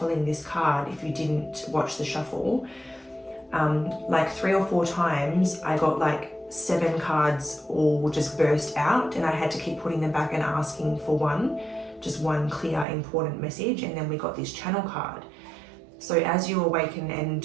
this card, if you didn't watch the shuffle, like 3 or 4 times I got like 7 cards all just burst out, and I had to keep putting them back and asking for just one clear important message, and then we got this channel card. So as you awaken and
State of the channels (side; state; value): left; drops out; at 12.9 s